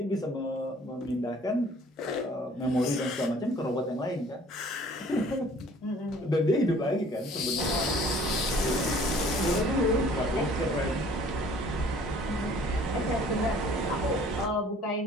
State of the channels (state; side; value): normal; both; correlation 0.54